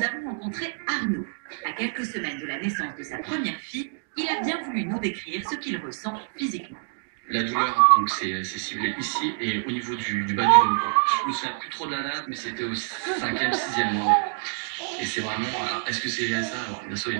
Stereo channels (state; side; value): silent; left; digital silence